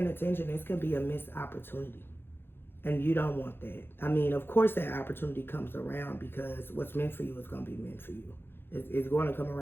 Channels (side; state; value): right; late; 0.10 ms